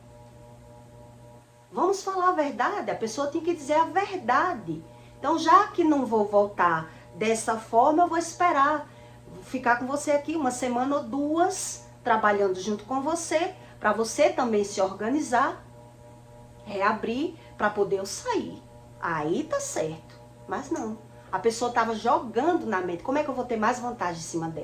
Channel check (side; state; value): both; identical; correlation 1.00